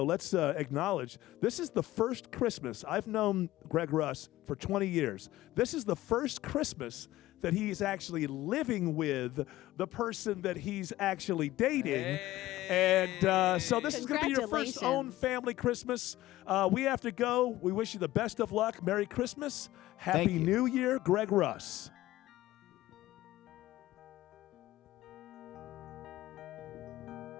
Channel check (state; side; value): quieter; right; 16.3 dB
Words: let's acknowledge, this is the first Christmas. I've known Greg Russ for 20 years. This is the first Christmas that he's actually living with the person that he's actually dating. And so this is going to be your first own family Christmas. We have to go. We wish you the best of luck. Merry Christmas. Happy New Year, Greg Russ.